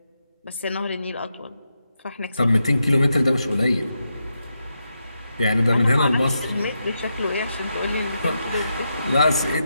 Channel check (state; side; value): inverted; both; correlation -0.85